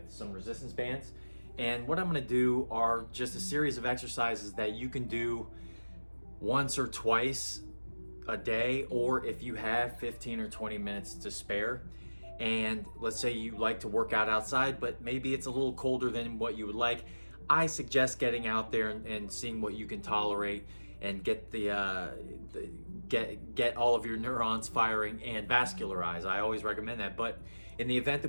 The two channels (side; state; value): both; inverted; correlation -1.00